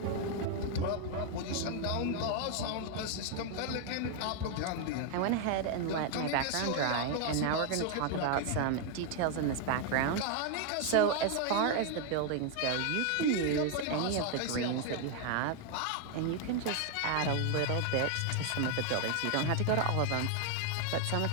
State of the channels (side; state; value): both; different; correlation 0.00